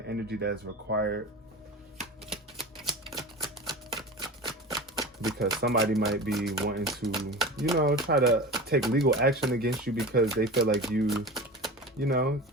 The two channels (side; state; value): both; normal; correlation 0.31